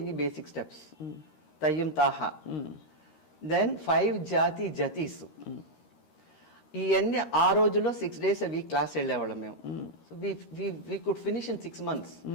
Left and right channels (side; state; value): right; late; 13 ms